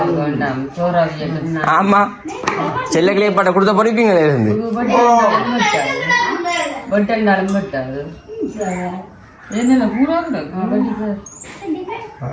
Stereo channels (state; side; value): identical; both; correlation 1.00